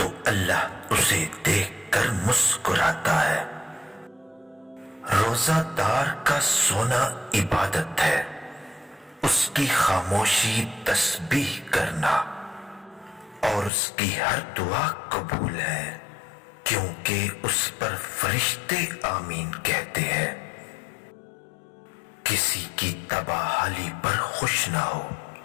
اللہ اسے دیکھ کر مسکراتا ہے۔ روزہ دار کا سونا عبادت ہے، اس کی خاموشی تسبیح کرنا، اور اس کی ہر دعا قبول ہے، کیونکہ اس پر فرشتے آمین کہتے ہیں۔ کسی کی تباہی پر خوش نہ ہو،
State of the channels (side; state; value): right; drops out; at 13.7 s